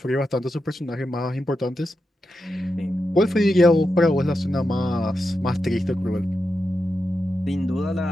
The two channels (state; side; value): normal; both; correlation 0.88